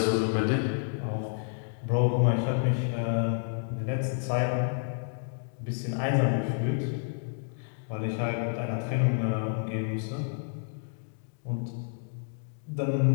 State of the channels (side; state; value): right; silent; digital silence